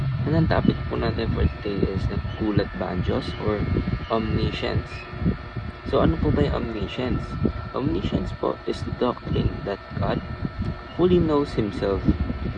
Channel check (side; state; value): both; identical; correlation 1.00